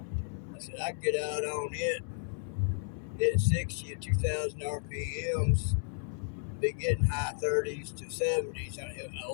I said, I can get out on it, hit 60 at 2,000 RPMs, be getting high 30s to 70s.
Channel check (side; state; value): right; silent; 56 dB below the other